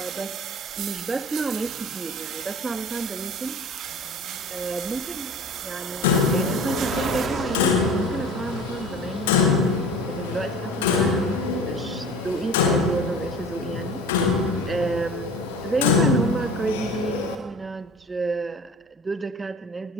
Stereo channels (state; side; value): normal; both; correlation 0.39